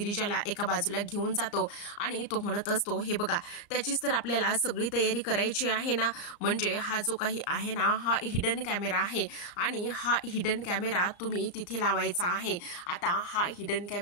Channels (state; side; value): late; right; 34 ms